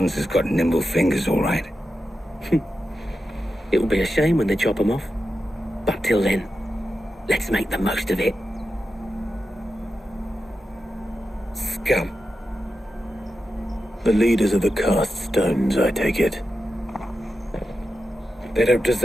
has got nimble fingers, all right. It will be a shame when they chop them off. But till then, let's make the most of it. Scum. The leaders of the cast stones, I take it. They don't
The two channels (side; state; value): both; normal; correlation 0.90